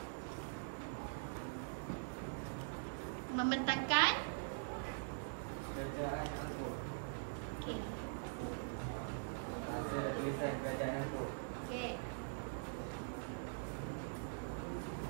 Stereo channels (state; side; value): silent; left; digital silence